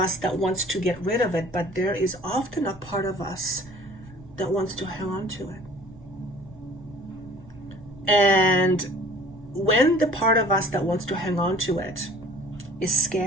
that wants to get rid of it, but there is often a part of us that wants to hang on to it. And when the part of us that wants to hang on to it is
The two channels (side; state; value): right; noise; rumble, 21 dB below the sound